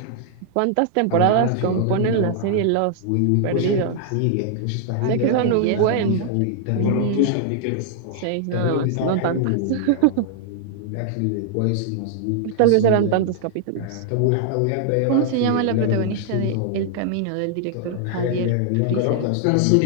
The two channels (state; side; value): different; both; correlation -0.01